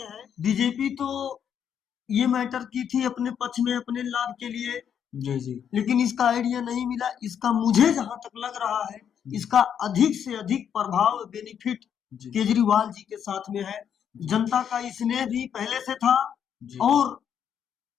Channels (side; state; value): right; quieter; 8.4 dB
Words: हैं। बीजेपी तो ये मैटर की थी अपने पक्ष में, अपने लाभ के लिए, जी जी लेकिन इसका आइडिया नहीं मिला। इसका मुझे जहां तक लग रहा है, इसका अधिक से अधिक प्रभाव बेनिफिट जी केजरीवाल जी के साथ में है। जनता का स्नेह भी पहले से था, जी और